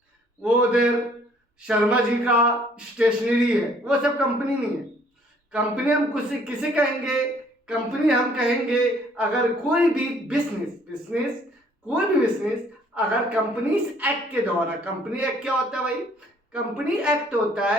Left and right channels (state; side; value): normal; both; correlation 0.61